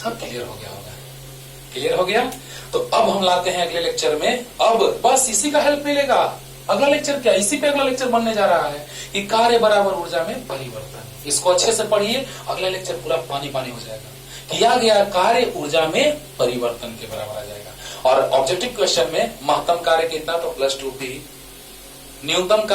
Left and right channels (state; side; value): identical; both; correlation 1.00